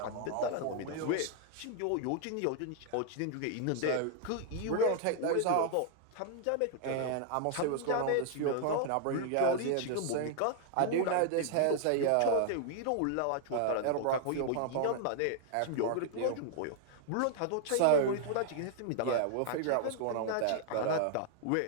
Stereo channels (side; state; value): both; different; correlation -0.01